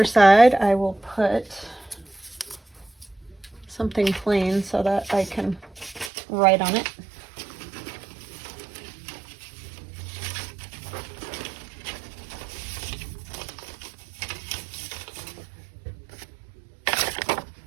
side, I will put something plain so that I can write on it.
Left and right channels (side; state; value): left; drops out; at 6.1 s